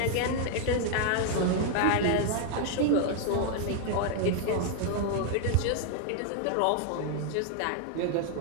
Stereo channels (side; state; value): both; different; correlation 0.00